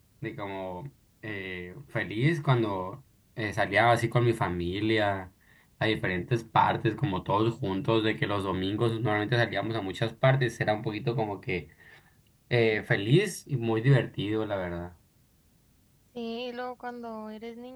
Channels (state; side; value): identical; both; correlation 1.00